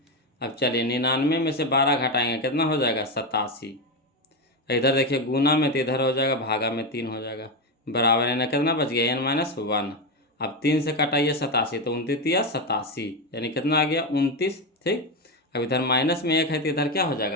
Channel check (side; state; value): both; normal; correlation 0.13